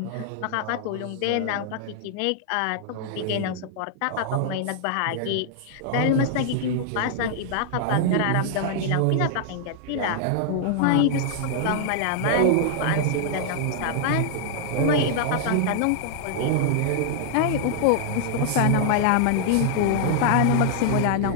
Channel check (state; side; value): different; both; correlation -0.01